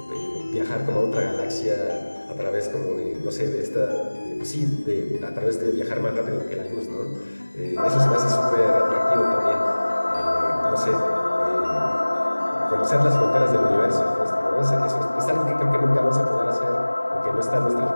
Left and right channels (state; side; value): inverted; both; correlation -1.00